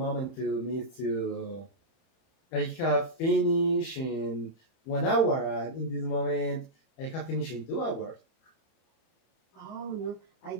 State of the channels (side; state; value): right; late; 31 ms